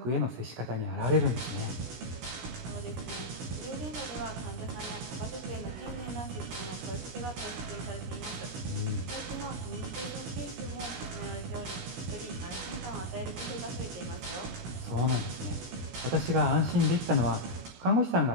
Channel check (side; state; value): left; late; 17 ms